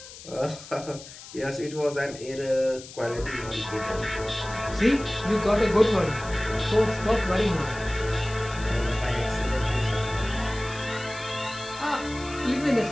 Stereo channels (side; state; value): left; noise; hiss, 16 dB below the sound